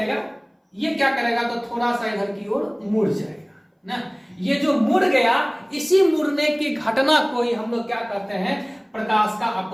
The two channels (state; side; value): identical; both; correlation 1.00